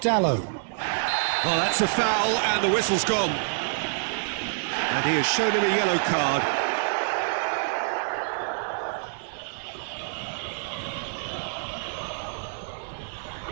Dallo. Oh, that's a foul, and the whistle's gone. And he has shown him a yellow card.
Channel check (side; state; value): left; silent; digital silence